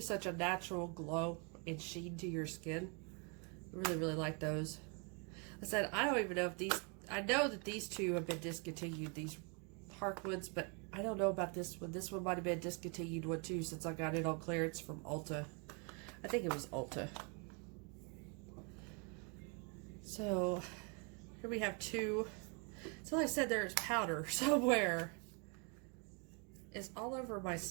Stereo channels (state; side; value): quieter; left; 35.0 dB